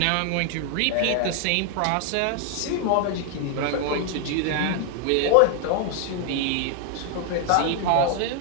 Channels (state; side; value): different; both; correlation 0.00